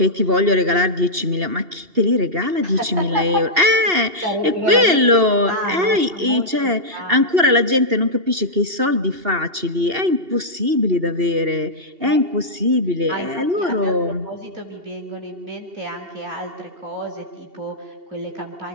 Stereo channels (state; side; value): late; left; 2.8 ms